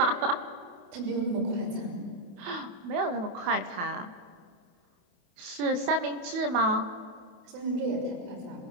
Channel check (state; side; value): late; left; 28 ms